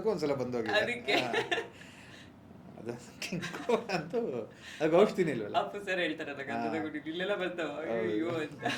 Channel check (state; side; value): identical; both; correlation 1.00